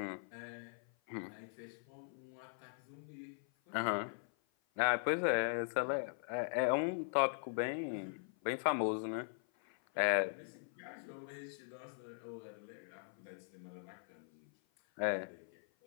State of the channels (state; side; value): silent; right; 51 dB below the other